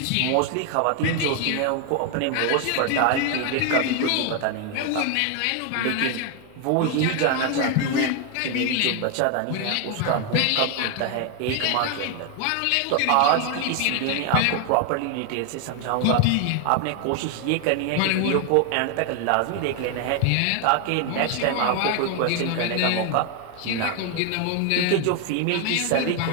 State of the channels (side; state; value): both; different; correlation 0.01